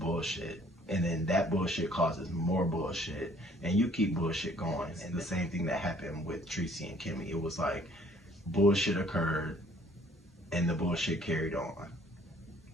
And then that bullshit causes more bullshit, and you keep bullshit going. And the same thing that happened with Treecey and Kimmy. It was like bullshit occurred, and the bullshit carried on.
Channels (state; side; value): normal; both; correlation 0.58